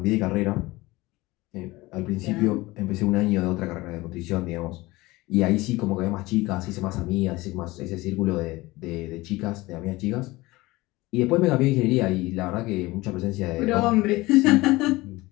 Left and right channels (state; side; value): quieter; right; 20.5 dB